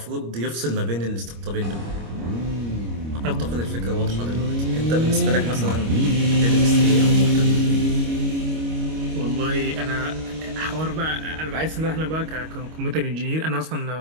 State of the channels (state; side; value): late; left; 25 ms